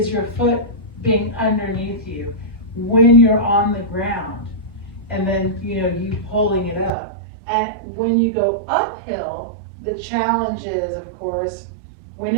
your foot being underneath you when you're on the ground, and then you pulling it up. And when you go uphill, the challenge is, of course, we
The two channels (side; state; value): left; drops out; at 6.9 s